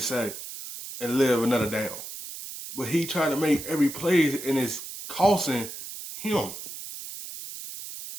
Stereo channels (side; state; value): right; noise; hiss, 10 dB below the sound